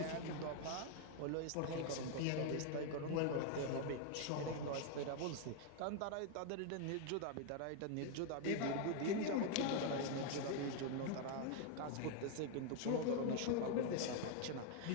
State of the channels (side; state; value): both; different; correlation 0.01